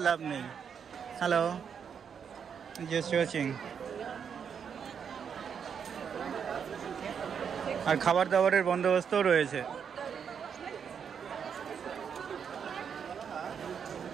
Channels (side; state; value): left; quieter; 7.2 dB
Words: লাভ নেই। Hello, just watching. আর খাবার দাবারের বন্দোবস্তও রয়েছে।